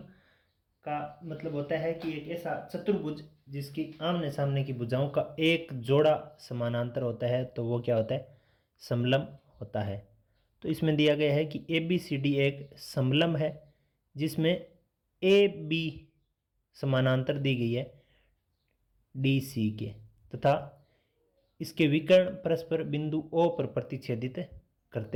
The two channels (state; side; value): identical; both; correlation 1.00